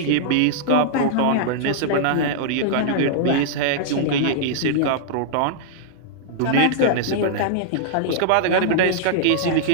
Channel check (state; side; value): different; both; correlation -0.01